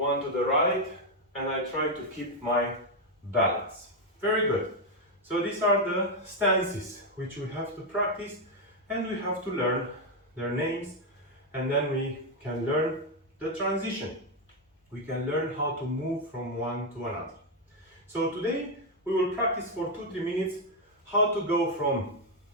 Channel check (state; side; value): normal; both; correlation 0.03